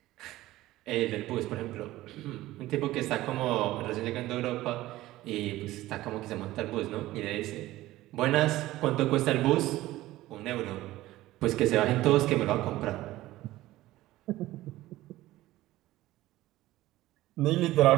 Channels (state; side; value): quieter; left; 16.5 dB